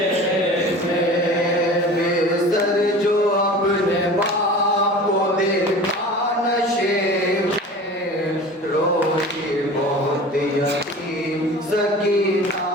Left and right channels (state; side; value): normal; both; correlation 0.38